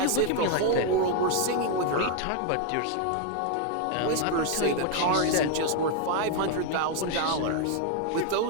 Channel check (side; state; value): both; different; correlation 0.00